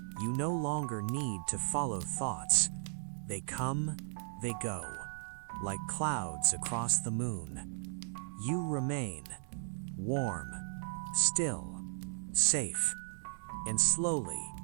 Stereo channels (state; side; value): silent; left; digital silence